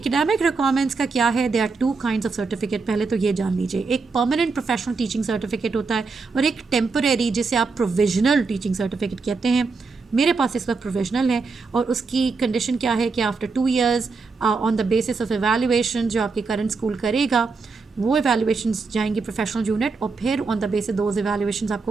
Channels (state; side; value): quieter; left; 4.4 dB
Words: रिक्वायरमेंट्स का क्या है, they are two kinds of certificate. पहले तो ये जान लीजिए, एक परमानेंट प्रोफेशनल टीचिंग सर्टिफिकेट होता है और एक टेम्परेरी जिसे आप प्रोविजनल टीचिंग सर्टिफिकेट कहते हैं। मेरे पास इस वक्त प्रोविजनल है और उसकी कंडीशन क्या है कि after 2 years on the basis of evaluation जो आपके करंट स्कूल करेगा, वो एवेल्युएशंस जाएंगी प्रोफेशनल यूनिट और फिर ऑन द बेसिस दोज एवेल्युएशंस